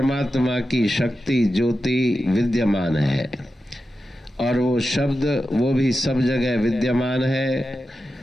की शक्ति ज्योति विद्यमान है, और वो शब्द वो भी सब जगह विद्यमान है।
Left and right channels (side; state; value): both; normal; correlation 0.91